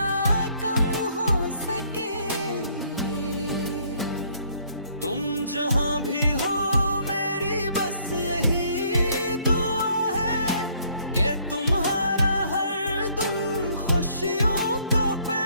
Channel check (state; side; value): inverted; both; correlation -0.64